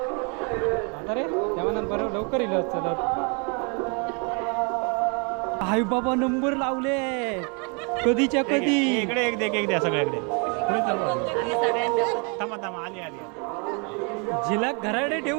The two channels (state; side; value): quieter; left; 35.1 dB